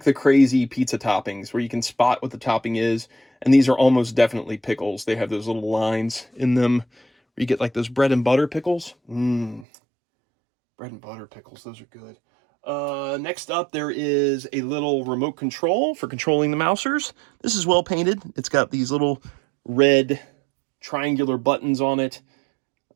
the crazy pizza toppings where you can spot what the topping is. And these are almost definitely pickles. They have those little lines in them where you get like those bread and butter pickles. Bread and butter pickles, those are good. Next up, there is a little remote control for controlling the Mousers. This is well painted. It's got these little red triangular buttons on it.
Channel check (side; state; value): left; drops out; at 9.7 s